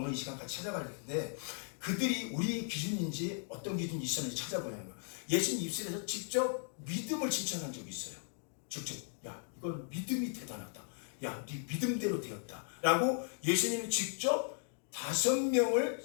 이 시간 같이 찾아갈 텐데 그들이 우리의 기준인지 어떤 기준이 있었는지 찾아보려는 거예요. 예수님 입술에서 직접 믿음을 칭찬한 적이 있어요. 직접 야 이건 믿음이 대단하다. 야 네 믿음대로 되었다. 라고 예수님이 직접 5명을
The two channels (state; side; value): silent; right; 53 dB below the other